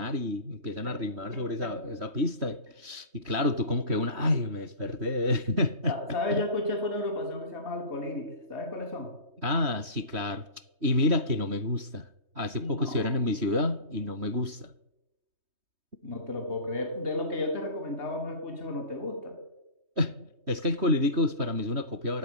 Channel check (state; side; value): late; left; 3.2 ms